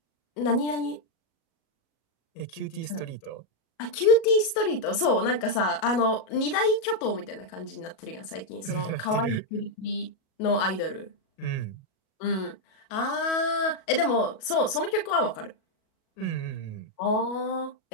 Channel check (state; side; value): late; right; 37 ms